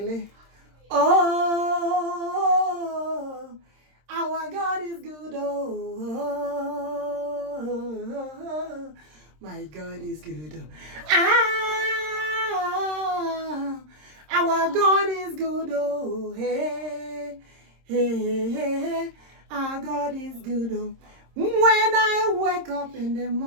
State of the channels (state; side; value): late; left; 26 ms